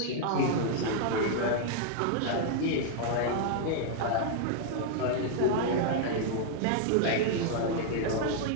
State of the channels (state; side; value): different; both; correlation 0.00